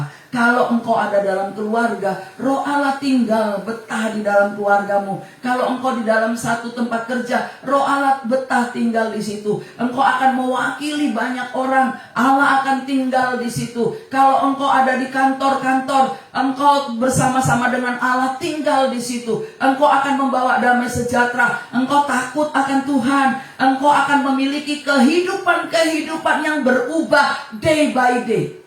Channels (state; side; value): identical; both; correlation 1.00